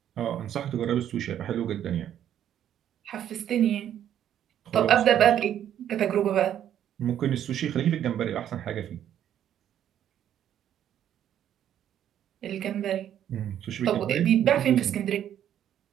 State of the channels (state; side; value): quieter; left; 10.5 dB